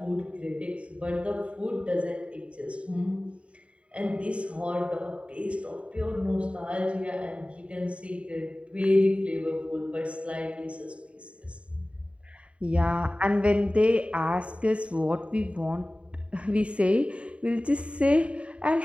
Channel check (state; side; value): late; left; 0.062 ms